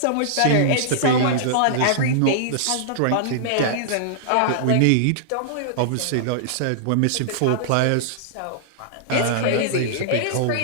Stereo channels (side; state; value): both; different; correlation -0.01